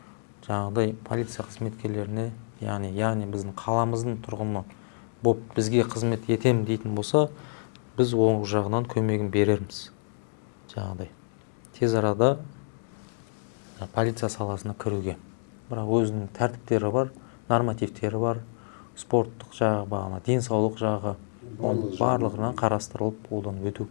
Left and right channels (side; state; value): right; silent; digital silence